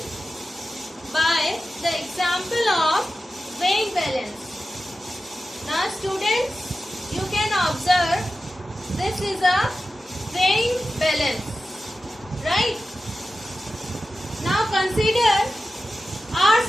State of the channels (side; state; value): both; normal; correlation 0.93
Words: by the example of weighing balance. Now students, you can observe this is a weighing balance, right? Now consider our